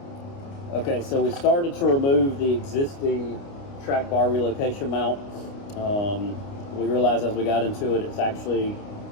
Okay, so we started to remove the existing track bar relocation mount. We realized as we got into it, it's actually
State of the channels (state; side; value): late; right; 29 ms